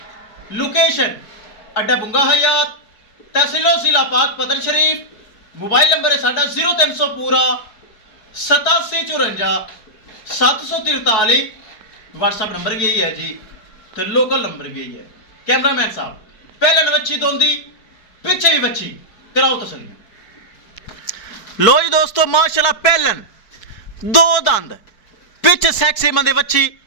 ਲੋਕੇਸ਼ਨ ਅੱਡਾ ਬੁੰਗਾ ਹਯਾਤ, ਤਹਿਸੀਲ ਜ਼ਿਲ੍ਹਾ ਪਾਕ ਪਤਨ ਸ਼ਰੀਫ। मोबाइल नंबर है साडा 0300 पूरा 8754 743। व्हाट्सअप नंबर भी यही है जी, तो लोकल नंबर भी यही है। कैमरामैन साहब पहले बच्ची दोंदी पीछे भी बच्ची कराओ तसलियां। लो जी दोस्तों माशाल्लाह पहलन दो दंद पिछ सैक्सी मंदे बच्ची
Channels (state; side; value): late; right; 4.6 ms